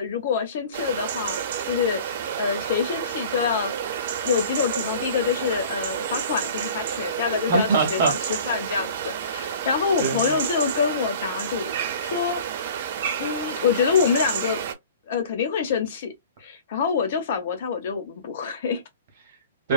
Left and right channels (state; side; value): inverted; both; correlation -0.44